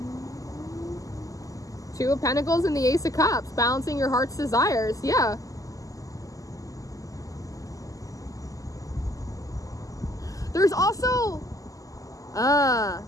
Two of Pentacles and the Ace of Cups, balancing your heart's desires. Yeah. There's also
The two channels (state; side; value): late; right; 0.17 ms